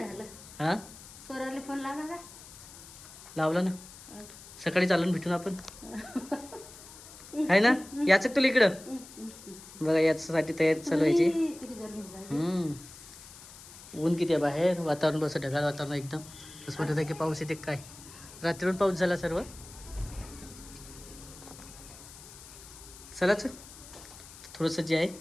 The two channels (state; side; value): noise; left; hiss, 17 dB below the sound